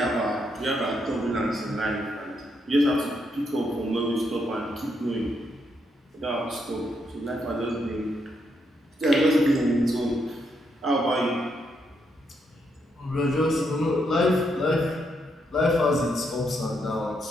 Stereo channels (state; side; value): normal; both; correlation 0.78